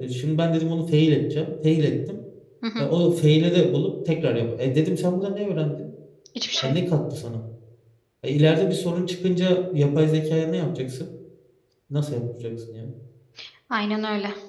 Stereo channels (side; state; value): both; identical; correlation 1.00